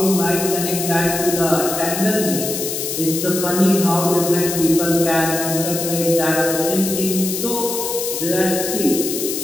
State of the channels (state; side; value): noise; left; hiss, 4 dB below the sound